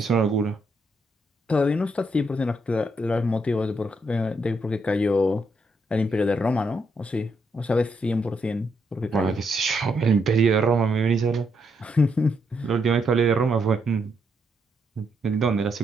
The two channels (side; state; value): both; normal; correlation 0.77